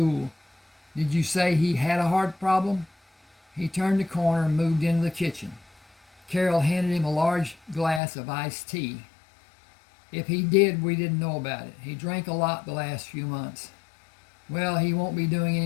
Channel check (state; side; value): drops out; right; at 8.0 s